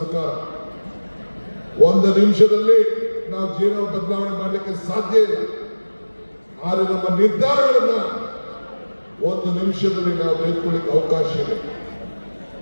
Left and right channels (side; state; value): both; inverted; correlation -1.00